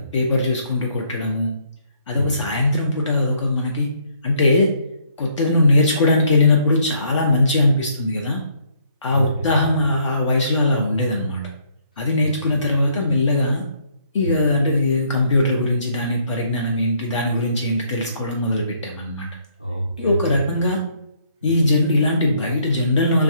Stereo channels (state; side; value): inverted; both; correlation -0.67